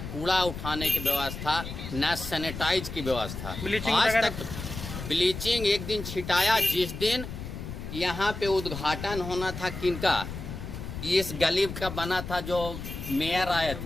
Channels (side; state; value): left; noise; rumble, 8 dB below the sound